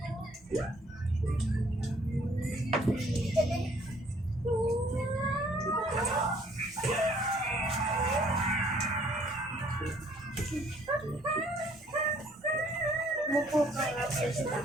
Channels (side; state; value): both; normal; correlation 0.61